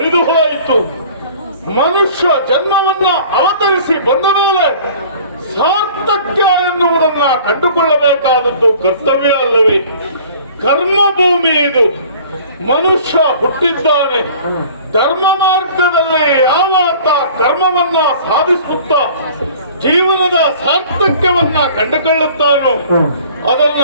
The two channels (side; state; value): both; inverted; correlation -0.48